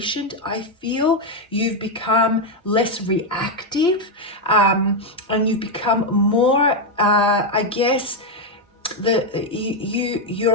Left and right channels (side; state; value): both; normal; correlation 0.03